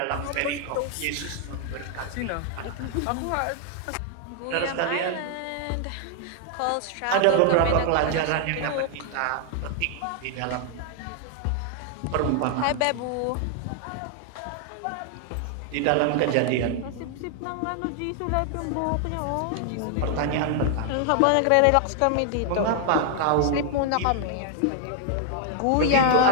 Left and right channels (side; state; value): both; different; correlation 0.00